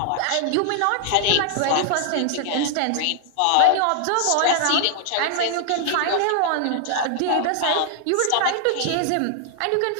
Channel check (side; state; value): both; different; correlation 0.00